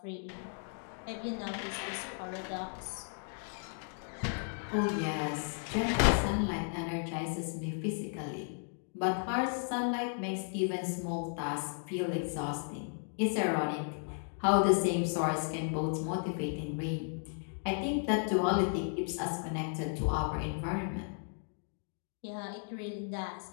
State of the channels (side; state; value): right; silent; 55 dB below the other